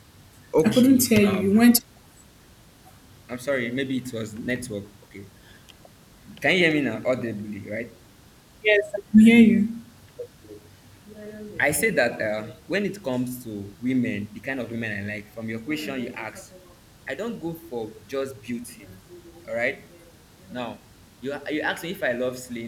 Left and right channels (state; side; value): identical; both; correlation 1.00